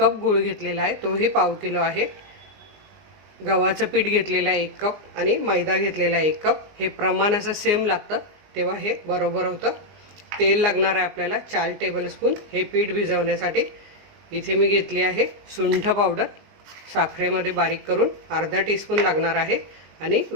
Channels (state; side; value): late; left; 19 ms